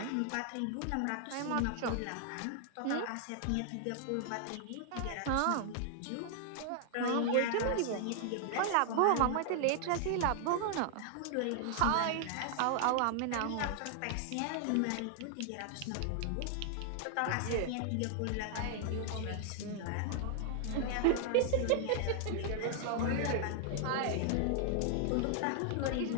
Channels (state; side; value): different; both; correlation 0.00